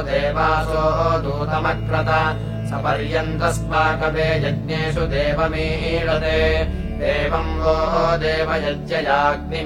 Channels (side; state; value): both; identical; correlation 1.00